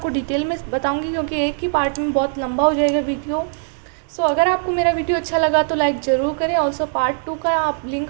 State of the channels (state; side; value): silent; left; 66 dB below the other